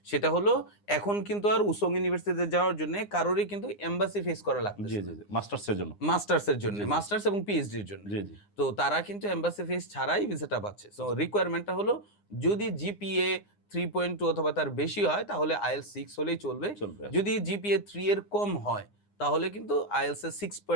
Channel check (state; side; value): late; right; 9.8 ms